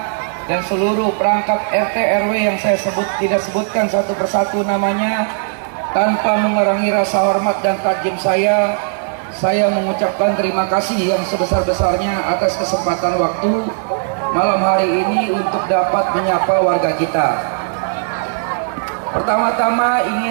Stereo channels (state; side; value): silent; left; digital silence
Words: dan seluruh perangkat RT RW yang saya tidak sebutkan satu persatu namanya, tanpa mengurangi rasa hormat dan takjub saya mengucapkan terima kasih yang sebesar-besarnya atas kesempatan waktu malam hari ini untuk dapat menyapa warga kita. Pertama-tama